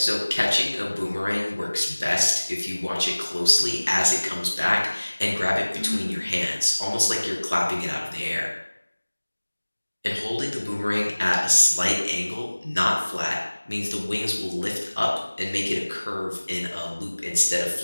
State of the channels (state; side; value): inverted; both; correlation -1.00